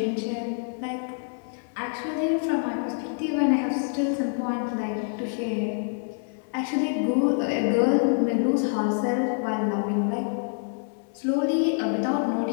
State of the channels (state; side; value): silent; right; 60 dB below the other